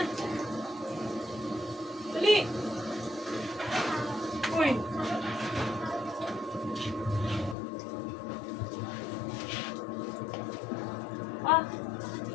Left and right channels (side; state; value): right; drops out; at 7.6 s